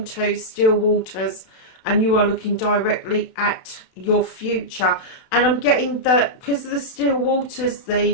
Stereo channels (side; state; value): right; late; 32 ms